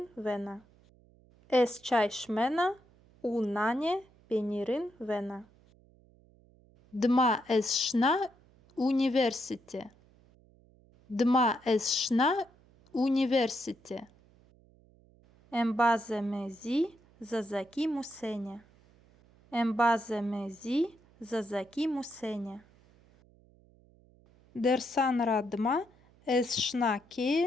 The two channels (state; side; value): noise; right; hum, 29 dB below the sound